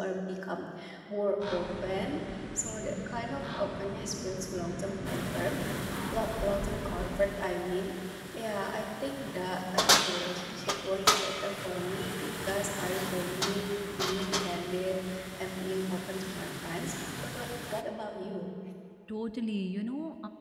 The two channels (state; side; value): identical; both; correlation 1.00